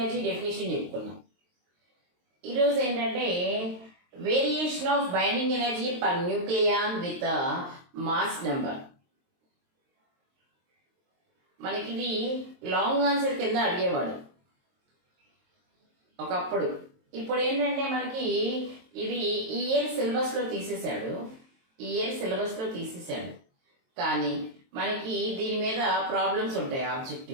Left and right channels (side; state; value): left; late; 23 ms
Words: డెఫినేషన్ చెప్పుకున్నాం. ఈరోజు ఏంటంటే variation of binding energy per nucleon with mass number. మనకి ఇది లాంగ్ ఆన్సర్ కింద అడిగేవాడు ఒకప్పుడు. ఇప్పుడు ఏంటంటే మనకి ఇది ఈ ఇయర్ సిలబస్లో తీసేశాడు. కానీ మనకి దీని మీద ప్రాబ్లమ్స్ ఉంటాయి